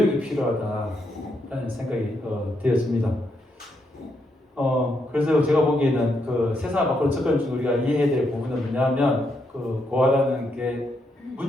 필요하다라는 생각이 되었습니다. 그래서 제가 보기에는 그 세상 밖으로 접근 중 우리가 이해해야 될 부분은 뭐냐면 그 고아라는 게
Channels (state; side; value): normal; both; correlation 0.79